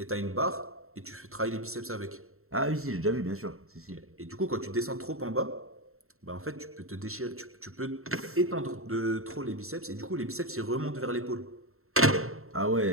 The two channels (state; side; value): late; left; 0.63 ms